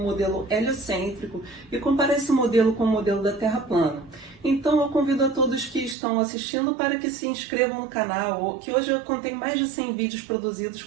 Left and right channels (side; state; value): left; drops out; at 6.0 s